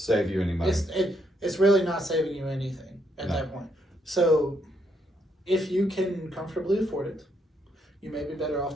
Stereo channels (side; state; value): both; normal; correlation 0.75